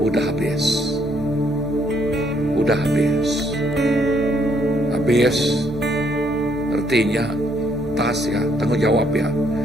udah habis. Udah habis. Habis artinya tas ya, tanggung jawab ya.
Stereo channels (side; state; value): both; normal; correlation 0.70